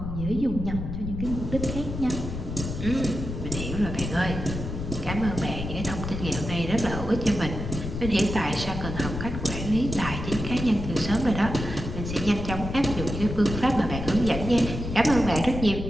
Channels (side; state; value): left; noise; rumble, 6 dB below the sound